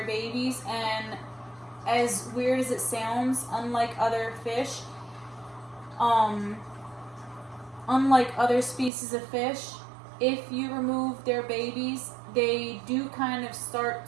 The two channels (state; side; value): drops out; left; at 8.9 s